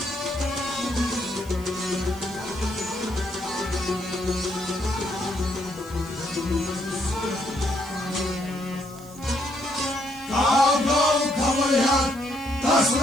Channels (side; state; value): right; noise; hiss, 22 dB below the sound